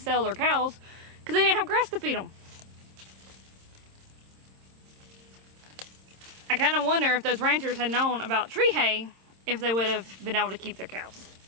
their cows because they didn't have grass to feed them. I kind of wonder if those ranchers had known about tree hay, if they would have been able to keep their cows.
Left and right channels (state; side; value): late; left; 26 ms